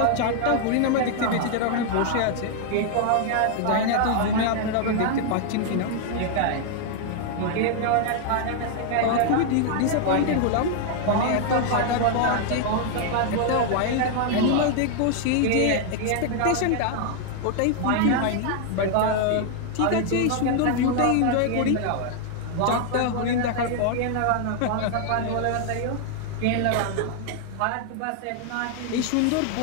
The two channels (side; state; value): both; different; correlation 0.00